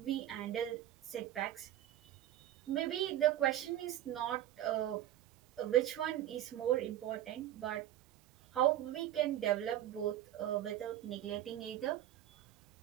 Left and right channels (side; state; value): left; quieter; 12.6 dB